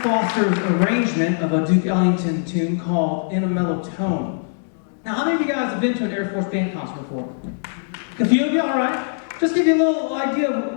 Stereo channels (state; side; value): silent; right; digital silence